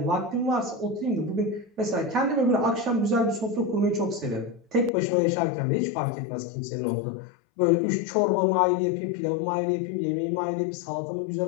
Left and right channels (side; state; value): right; drops out; at 4.9 s